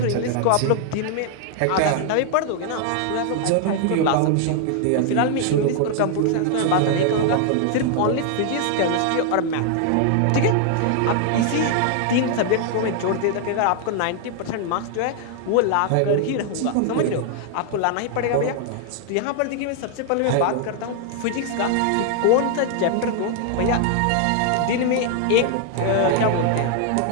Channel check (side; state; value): both; different; correlation 0.00